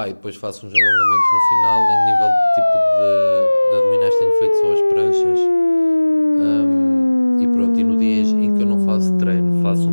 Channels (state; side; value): inverted; both; correlation -1.00